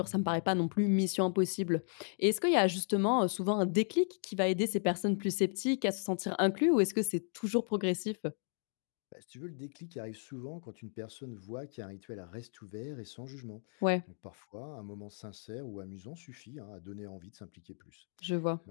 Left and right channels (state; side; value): silent; right; 55 dB below the other